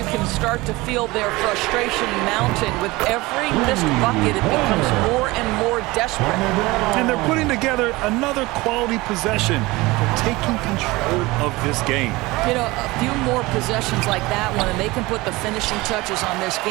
can start to feel their frustration mounting. With every missed bucket, it becomes more and more desperate. And they're putting together another quality possession. They're taking control of this game. You know, a few more possessions like that one, and they can put the finishing touches on this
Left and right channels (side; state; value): left; quieter; 21.3 dB